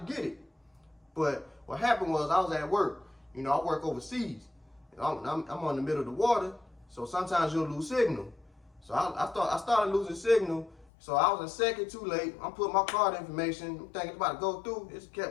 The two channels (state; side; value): drops out; right; at 10.9 s